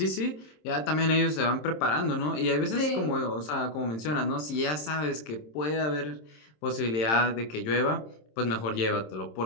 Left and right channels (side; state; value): right; late; 27 ms